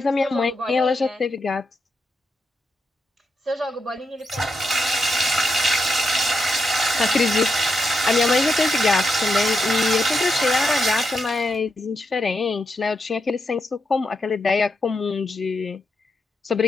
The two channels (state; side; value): normal; both; correlation 0.84